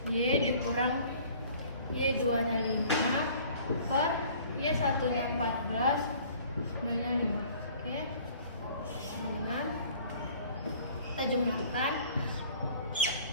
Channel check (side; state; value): both; inverted; correlation -0.51